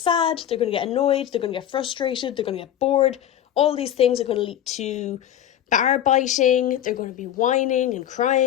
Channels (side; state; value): right; quieter; 10.8 dB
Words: they're going to get annoyed, they're going to get frustrated, they're going to get bored. All these things are going to lead to bar biting. They're going to be whining and